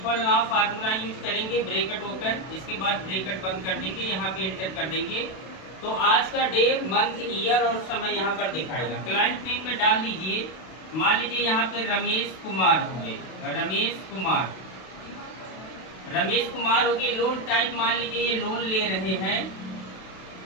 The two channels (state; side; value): late; right; 32 ms